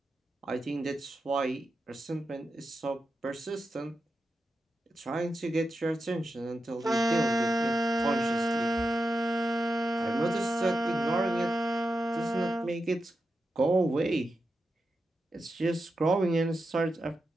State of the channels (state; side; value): normal; both; correlation 0.88